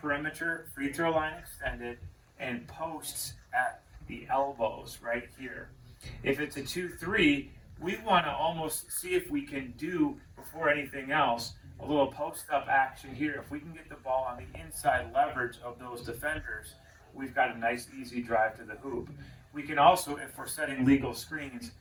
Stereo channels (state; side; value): identical; both; correlation 1.00